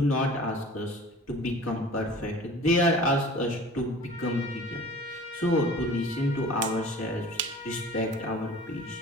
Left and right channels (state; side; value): normal; both; correlation 0.43